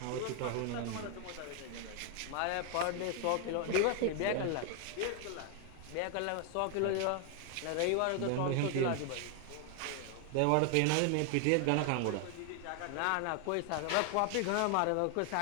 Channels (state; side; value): different; both; correlation 0.00